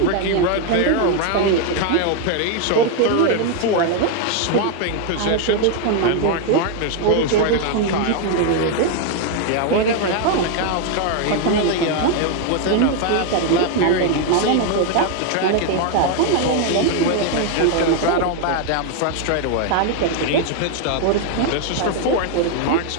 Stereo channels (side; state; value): both; different; correlation 0.00